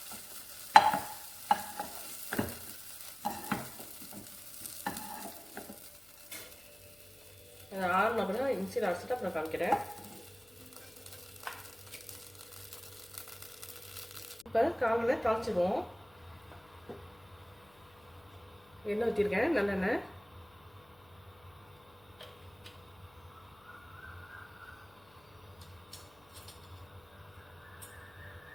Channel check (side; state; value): left; noise; hum, 27 dB below the sound